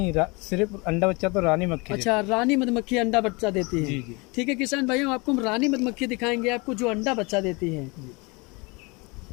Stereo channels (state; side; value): quieter; right; 27.6 dB